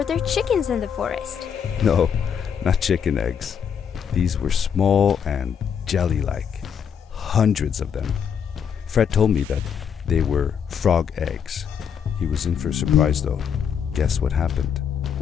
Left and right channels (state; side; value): quieter; right; 7.5 dB